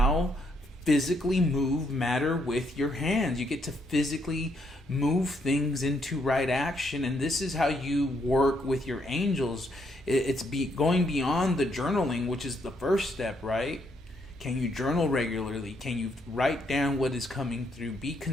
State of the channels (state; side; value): normal; both; correlation 0.74